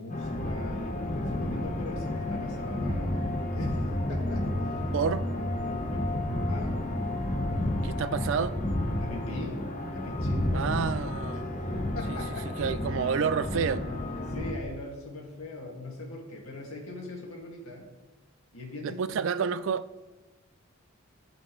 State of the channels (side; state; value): both; normal; correlation 0.45